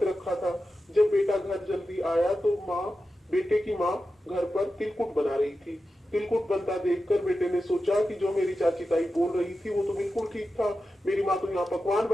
रखा था। जब बेटा घर जल्दी आया तो बेटे की माँ घर पर तिलकुट बना रही थी। तिलकुट बनता देखकर बेटे ने सोचा कि जो मेरी चाची ताई बोल रही थी वो तो बिल्कुल ठीक था, मेरी माँ तो यहाँ पकवान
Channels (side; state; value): both; normal; correlation 0.92